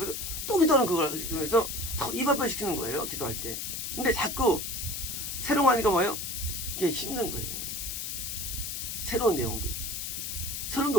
또 기도하는 그걸 해서 입 앞에 시키는 거예요. 기도할 때. 근데 자꾸 새로운 거 하니까 뭐예요? 이게 힘든 거예요. 새로운 내용들. 새로운 게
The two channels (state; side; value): noise; left; hiss, 4 dB below the sound